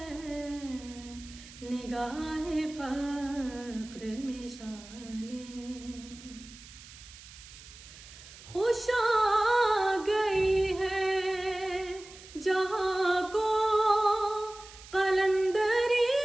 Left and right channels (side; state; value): right; noise; hiss, 18 dB below the sound